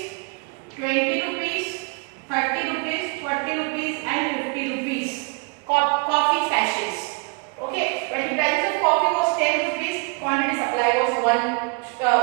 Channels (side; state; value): left; quieter; 31.5 dB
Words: 20 rupees, 30 rupees, 40 rupees and 50 rupees. Coffee sachets.